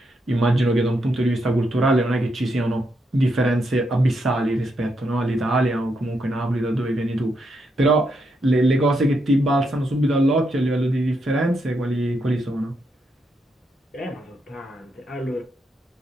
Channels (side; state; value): both; normal; correlation 0.80